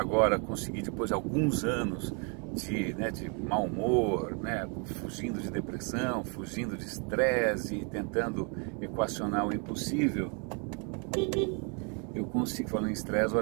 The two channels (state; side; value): quieter; left; 37.0 dB